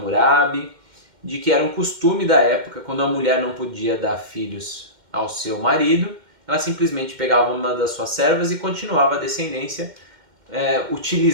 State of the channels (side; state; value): left; late; 2.1 ms